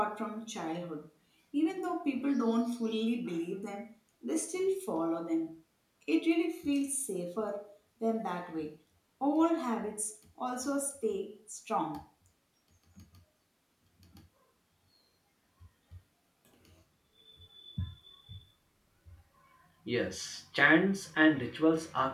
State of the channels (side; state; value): both; identical; correlation 1.00